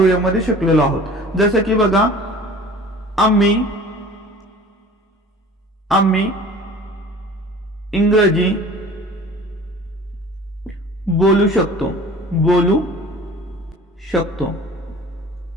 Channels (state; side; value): normal; both; correlation 0.44